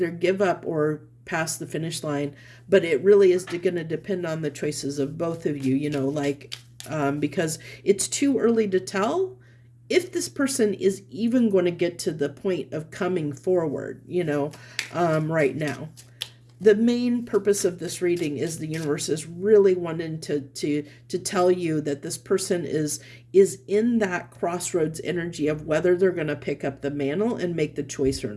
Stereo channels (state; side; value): identical; both; correlation 1.00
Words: give up or pass the finish line, but it really is going to depend on the choices of both of you, because it's too early to tell if this person is even going to get to the point of coming forward, right now. The main purpose of this reading is the universe is really wanting to tell you that this person is in that crossroads energy of whether they're going to pick up the mantle and make the choice or